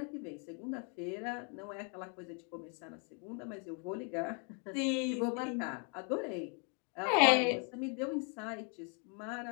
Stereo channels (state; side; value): quieter; right; 39.1 dB